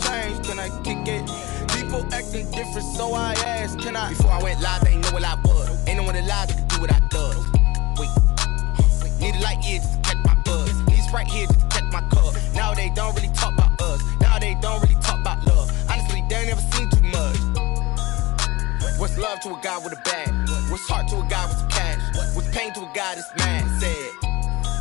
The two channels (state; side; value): quieter; right; 21.1 dB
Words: can I kick it? People acting different, so I asked, can I? Before I went live, they ain't know what I was. Ain't no one alive that could do what I does. Wait, need a light here just to catch my buzz. Need Sprite here just to catch my cup. Now they don't really talk about us. Now they don't really talk about love. Honestly, they ain't never seen too much. What's love to a guy with a bag? What's heart to a guy with some cash? What's pain to a guy that's mad? Said.